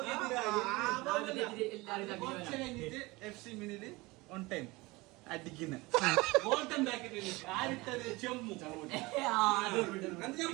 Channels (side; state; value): left; quieter; 22.5 dB